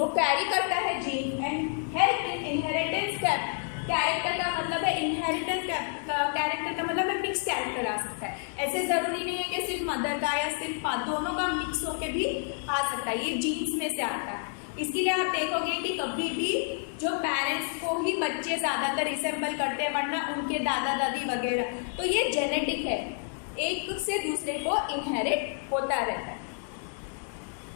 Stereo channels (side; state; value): right; silent; 58 dB below the other